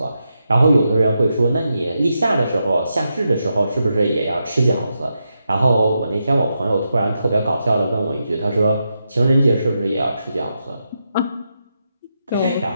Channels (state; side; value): inverted; both; correlation -0.85